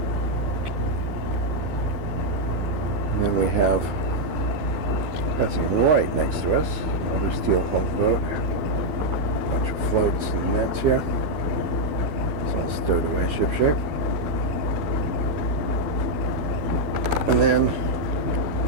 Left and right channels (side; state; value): left; late; 12 ms